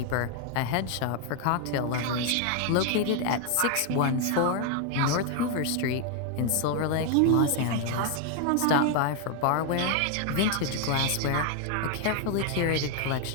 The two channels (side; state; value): both; different; correlation 0.01